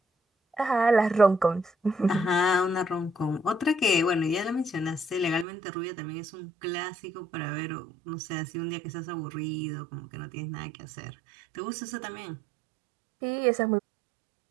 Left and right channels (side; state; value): left; drops out; at 5.5 s